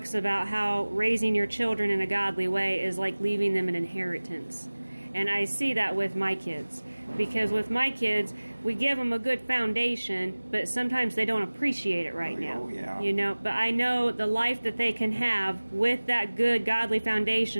about how raising your children in a godly way is like leaving them an inheritance. And I see that with my kids. Because with my kids, we give them a good foundation, but sometimes they don't appreciate it right now. Yeah. You know, but I know the life that they can have with that good godly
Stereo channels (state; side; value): inverted; both; correlation -1.00